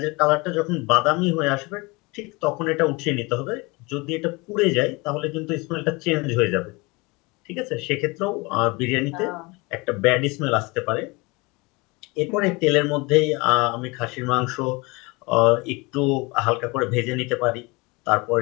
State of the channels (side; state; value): right; quieter; 25.6 dB